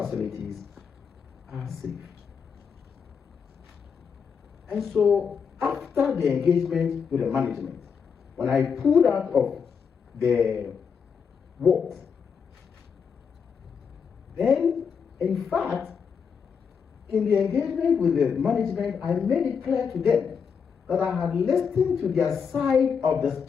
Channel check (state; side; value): quieter; right; 6.4 dB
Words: are safe. And so, after the engagement with the management, when I pulled out of the wards, then, in fact, in the engagement with the management, I made it clear to them that I had listened to their side of the